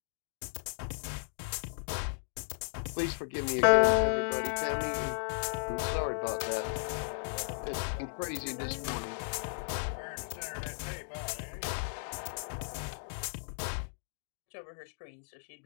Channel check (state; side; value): silent; right; digital silence